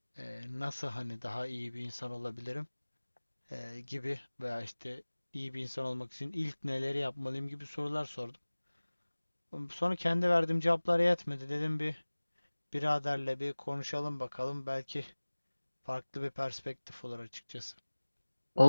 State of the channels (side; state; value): both; inverted; correlation -1.00